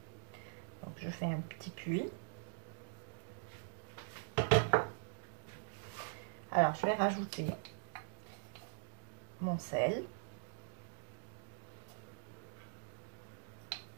Donc je fais un petit puits. Alors je vais rajouter mon sel.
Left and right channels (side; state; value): left; silent; digital silence